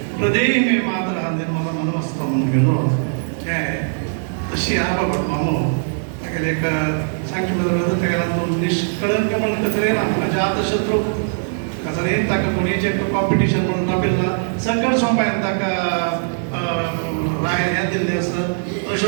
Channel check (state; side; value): silent; left; digital silence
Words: प्रदेय मे मात्र निर्मला मनमस्त म्हणून घेऊन हे तशी आपा कुटुंबामो ताका एक सांगचे बरोबर ताका निष्कळंक म्हणून कचरे ना अजात शत्रू कसं ताका कोणीचे कॉम्पिटिशन म्हणून राबिल्ला सकळ सोंपायन ताका राय हें दिल्लें आसा